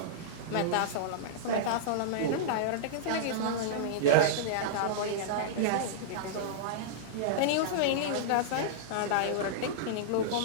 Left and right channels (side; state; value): both; different; correlation -0.03